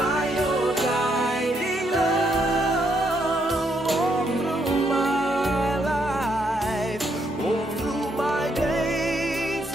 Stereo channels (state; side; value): normal; both; correlation 0.75